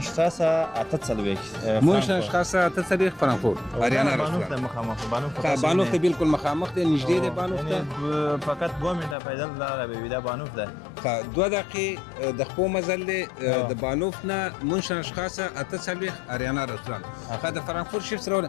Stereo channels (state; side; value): drops out; right; at 9.2 s